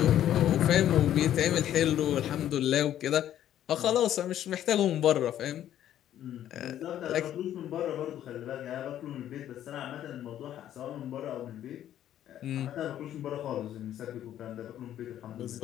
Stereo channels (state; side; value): quieter; right; 11.5 dB